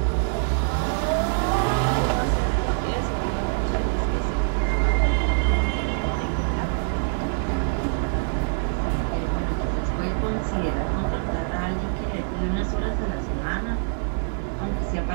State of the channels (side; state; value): left; silent; 62 dB below the other